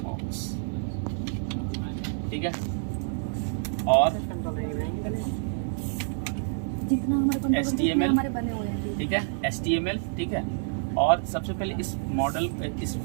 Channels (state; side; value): silent; left; digital silence